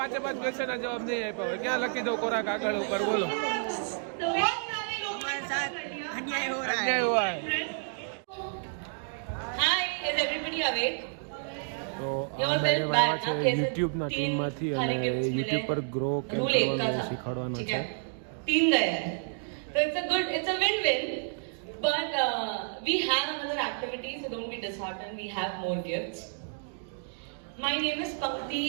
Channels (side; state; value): left; silent; digital silence